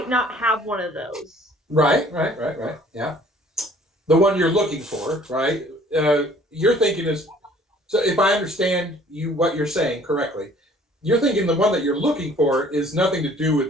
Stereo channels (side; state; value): both; normal; correlation 0.55